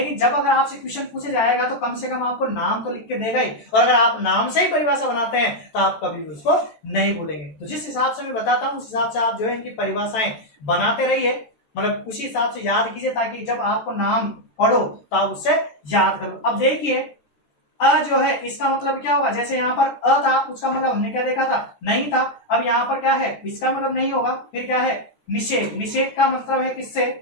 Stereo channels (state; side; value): late; right; 14 ms